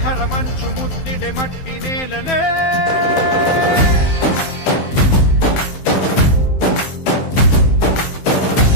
మంచు ముద్దిడె మట్టి నేలనే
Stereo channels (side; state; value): right; late; 15 ms